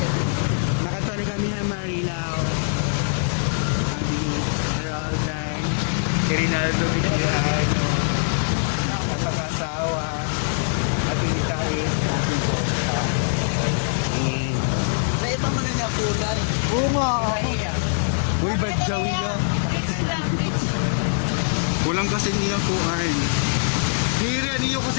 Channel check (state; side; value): silent; right; digital silence